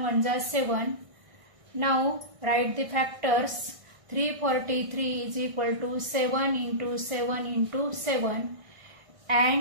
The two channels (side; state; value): left; late; 1.6 ms